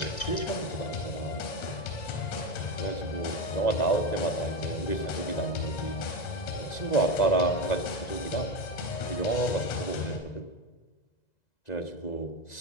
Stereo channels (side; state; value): right; late; 2.0 ms